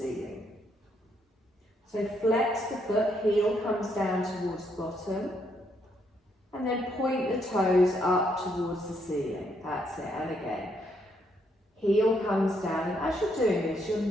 So flex the foot, heel comes down towards the bottom. And then point the toes up towards the ceiling. That's it. And again, heel comes down. And as you're doing this, your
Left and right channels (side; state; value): both; normal; correlation 0.74